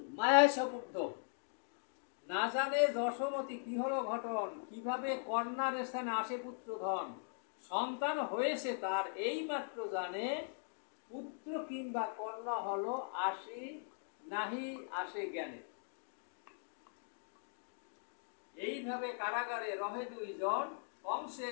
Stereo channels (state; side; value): silent; right; digital silence